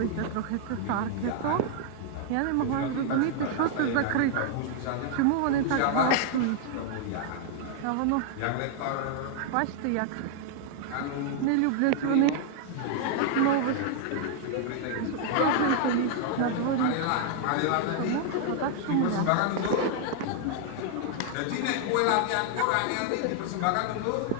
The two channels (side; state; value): both; different; correlation 0.00